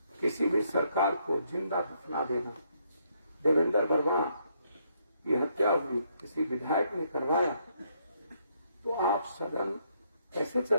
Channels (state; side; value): inverted; both; correlation -0.73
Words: किसी भी सरकार को जिंदा दफना देना। देवेंद्र वर्मा की हत्या हुई, किसी विधायक ने करवाया, तो आप सदन कैसे